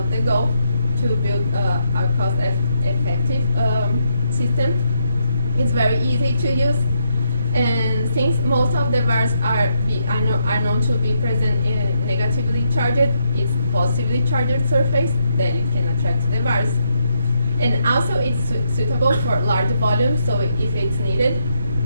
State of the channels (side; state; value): both; inverted; correlation -0.76